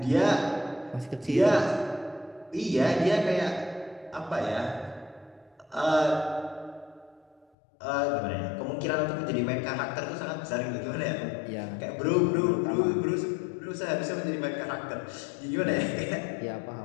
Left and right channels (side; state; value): right; drops out; at 7.5 s